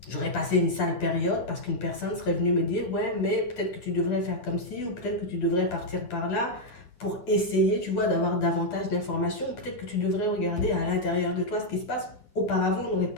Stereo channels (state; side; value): late; right; 9.9 ms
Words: J'aurais passé une sale période parce qu'une personne serait venue me dire, ouais, mais peut-être que tu devrais faire comme ci, ou peut-être que tu devrais partir par là, pour essayer, tu vois, d'avoir davantage d'informations. Peut-être que tu devrais regarder à l'intérieur de toi ce qui se passe. Auparavant, on n'aurait